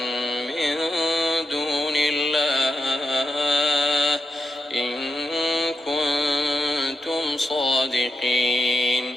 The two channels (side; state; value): both; normal; correlation 0.88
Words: من دون الله إن كنتم